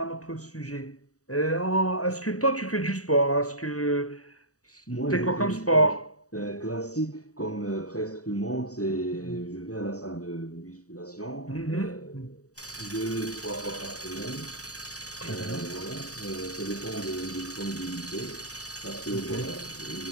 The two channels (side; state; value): right; late; 0.66 ms